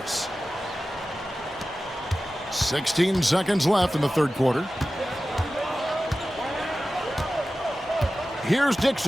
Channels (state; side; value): normal; both; correlation 0.95